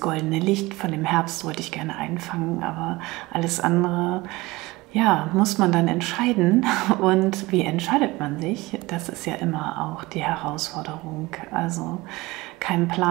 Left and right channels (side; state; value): left; quieter; 21.1 dB